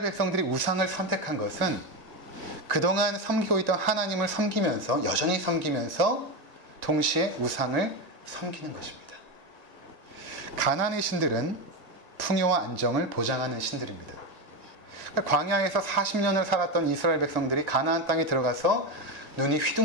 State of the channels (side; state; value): left; late; 1.9 ms